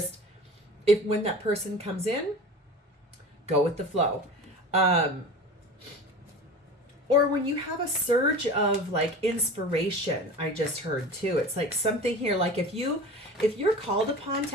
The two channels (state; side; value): normal; both; correlation 0.35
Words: when that person comes in, go with the flow. Or when you have a surge of like inspiration, I just heard too. It's like something here, like if you're called upon